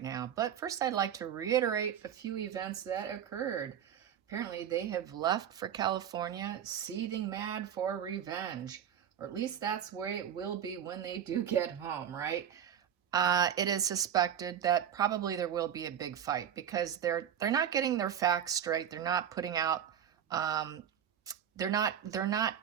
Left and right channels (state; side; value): quieter; left; 9.2 dB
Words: now. But first, I'd like to reiterate a few events that occurred. Apparently, they have left for California, seething mad for revenge. Or at least that's where it will be when they do get home, right? It is suspected that probably there will be a big fight because they're not getting their facts straight. They're not putting out. Um, they're not